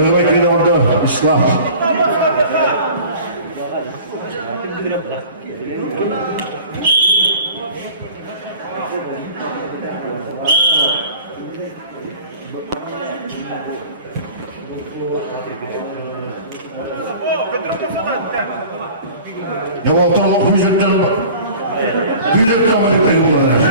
ikili aldı İslam. Ne oldu füzetten kamerayı peygamberler.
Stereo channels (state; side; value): inverted; both; correlation -0.43